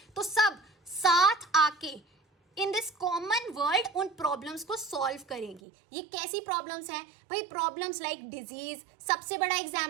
तो सब साथ आके इन दिस कॉमन वर्ल्ड उन प्रॉब्लम्स को सॉल्व करेंगी. ये कैसी प्रॉब्लम्स हैं भाई? प्रॉब्लम्स लाइक डिजीज, सबसे बड़ा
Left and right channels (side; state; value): left; drops out; at 5.6 s